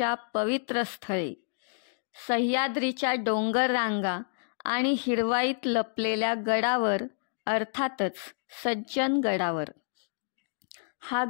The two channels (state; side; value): silent; right; digital silence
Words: पवित्र स्थळी सह्याद्रीच्या डोंगर रांगा आणि हिरवाईत लपलेल्या गडावर, अर्थातच सज्जनगडावर. हा